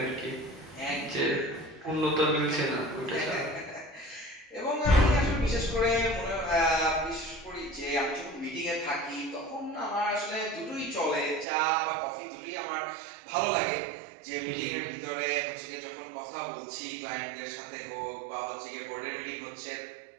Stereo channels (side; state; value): left; drops out; at 11.5 s